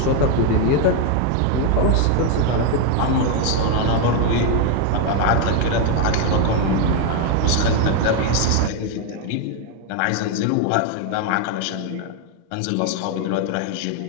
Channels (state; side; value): different; both; correlation 0.01